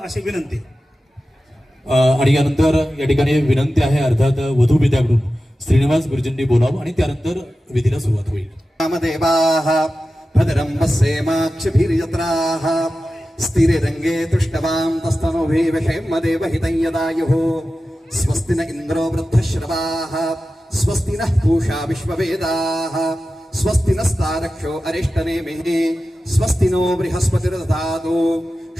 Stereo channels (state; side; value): normal; both; correlation 0.94